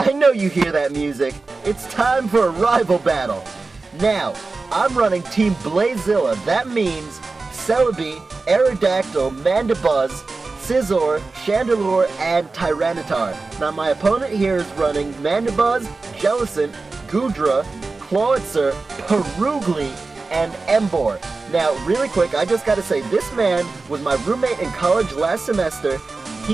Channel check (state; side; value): quieter; left; 3.8 dB